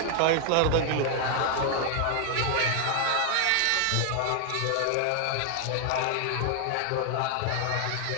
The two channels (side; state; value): both; different; correlation 0.00